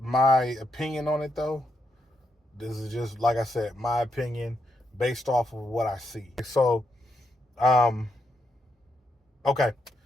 opinion on it though. This is just like I said, my opinion based off of what I see. So, um, okay.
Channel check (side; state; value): both; normal; correlation 0.80